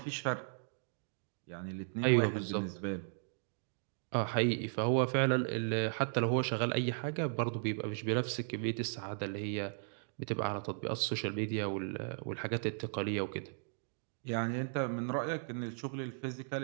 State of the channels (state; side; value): silent; left; digital silence